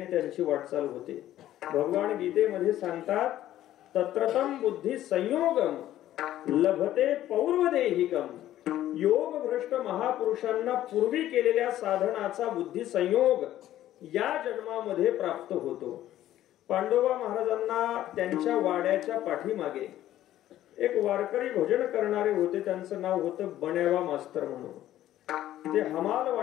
त्यांची वाटचाल होते. भगवान गीतेमध्ये सांगतात तत्रतम बुद्धी संयोगम लभते पौर्वदेहिकम. योग भ्रष्ट महापुरुषांना पूर्वी केलेल्या साधनाचा बुद्धी संयोग या जन्मामध्ये प्राप्त होतो. पांडोबा महाराजांना त्यांच्या वाड्याच्या पाठीमागे एक वारकरी भजन करणारे होते. त्यांचं नाव होतं बण्यावा मास्तर म्हणून. ते हमाल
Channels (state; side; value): quieter; right; 13.1 dB